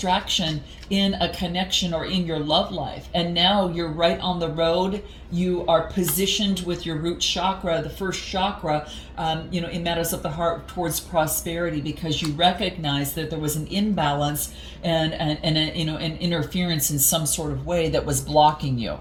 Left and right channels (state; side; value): identical; both; correlation 1.00